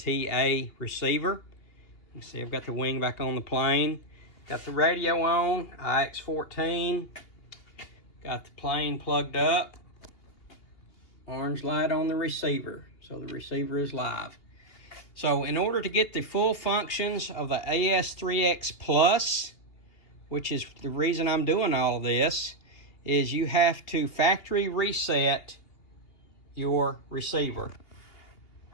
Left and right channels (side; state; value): right; late; 2.8 ms